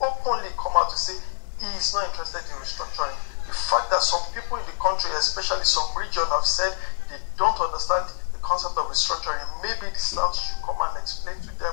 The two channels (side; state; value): right; silent; digital silence